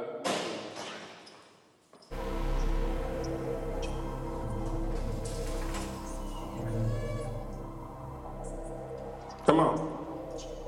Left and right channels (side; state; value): both; identical; correlation 1.00